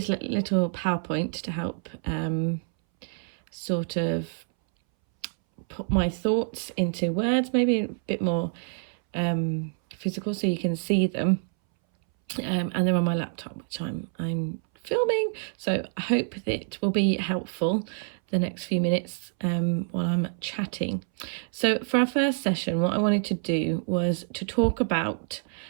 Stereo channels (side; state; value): left; silent; 60 dB below the other